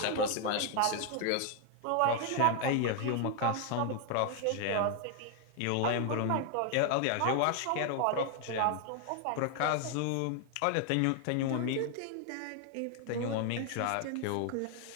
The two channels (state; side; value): different; both; correlation 0.00